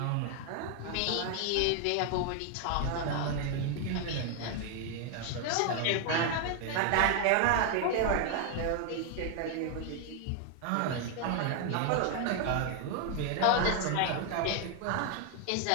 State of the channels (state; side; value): different; both; correlation 0.00